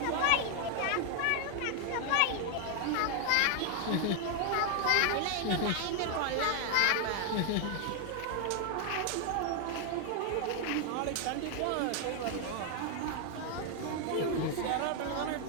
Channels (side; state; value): both; different; correlation 0.00